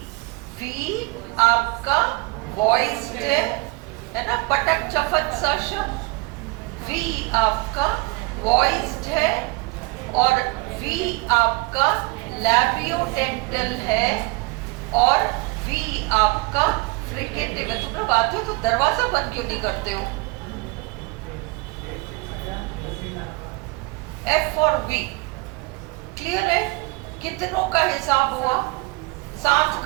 वी आपका वॉइस्ड है ना, पटक चफत सा शब्द। वी आपका वॉइस्ड है और वी आपका लैबियोडेंटल है और वी आपका फ्रिकेटिव है। तुम लोग आते हो तो दरवाजा बंद क्यों नहीं करते हो? F और V। क्लियर है? कितनों का हिसाब हुआ? 7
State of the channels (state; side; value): quieter; left; 25.9 dB